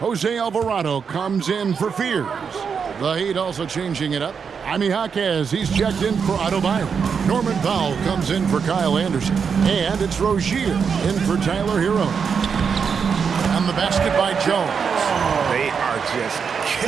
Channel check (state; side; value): quieter; left; 6.3 dB